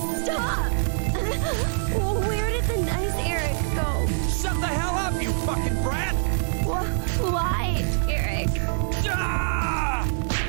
Stop! Where did the nice Eric go? Shut the hell up, you fucking brat! Why, Eric? Ah!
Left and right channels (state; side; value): silent; left; 62 dB below the other